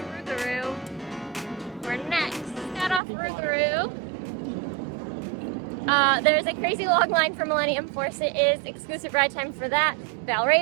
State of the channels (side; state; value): left; drops out; at 3.0 s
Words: We're next. Got off Rougarou. There's a crazy long line for Millennium Force. It is exclusive ride time for that.